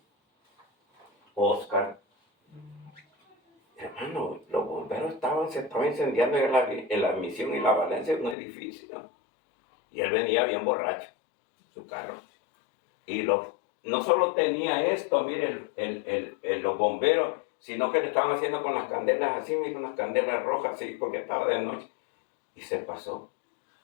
Oscar, hermano, los bomberos se estaban incendiando en la Misión y la Valencia un edificio. Y él venía bien borracho, su carro. Y no solo tenía esto, mire, los bomberos, sino que le estaban haciendo con las candelas así, con las candelas rojas así, porque estaba de noche. Y se pasó.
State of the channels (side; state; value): right; drops out; at 8.3 s